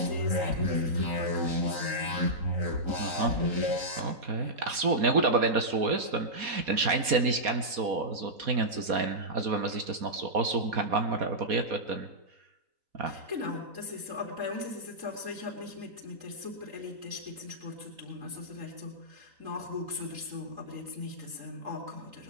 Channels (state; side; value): late; left; 4.2 ms